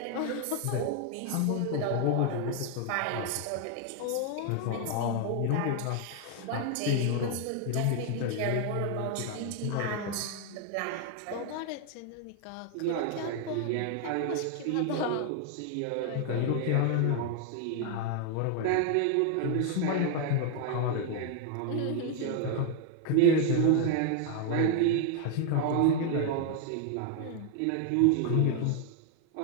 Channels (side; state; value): both; different; correlation 0.00